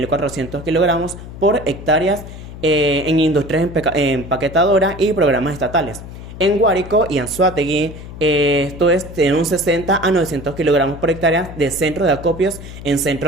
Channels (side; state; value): left; noise; hum, 13 dB below the sound